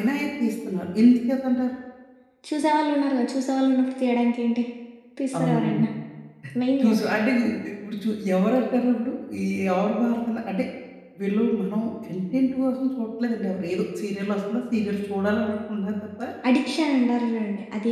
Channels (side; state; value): both; identical; correlation 1.00